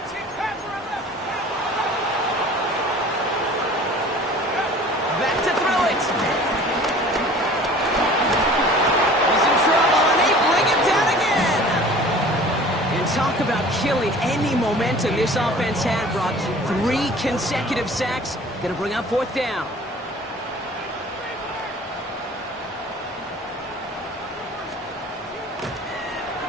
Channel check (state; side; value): normal; both; correlation 0.46